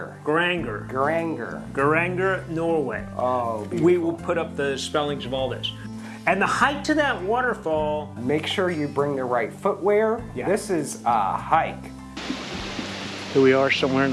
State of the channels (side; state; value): both; identical; correlation 1.00